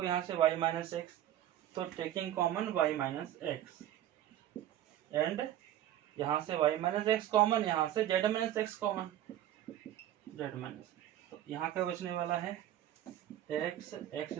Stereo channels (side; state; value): left; quieter; 12.3 dB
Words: यहाँ से, y माइनस एक्स, तो taking common y minus x, and यहाँ से y माइनस एक्स कॉमन, यहाँ से z minus x common, z minus, तो यहाँ का बचने वाला है x x